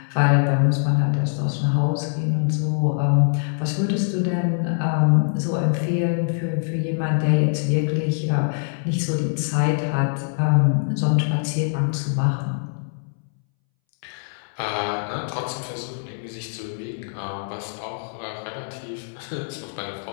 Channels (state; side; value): silent; right; 62 dB below the other